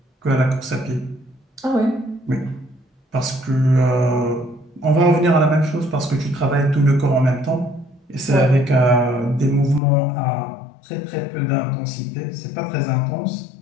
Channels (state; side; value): drops out; right; at 9.8 s